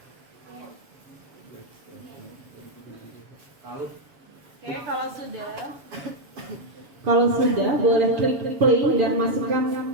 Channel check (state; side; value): late; left; 7.2 ms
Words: Oke, kalau sudah boleh klik play dan masukkan